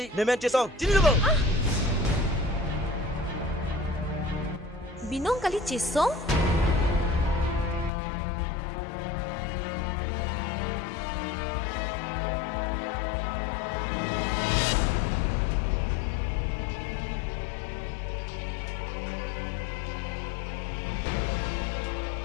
nemen Chesong. Sini dulu. Binong kali Chesong?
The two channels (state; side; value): drops out; right; at 7.9 s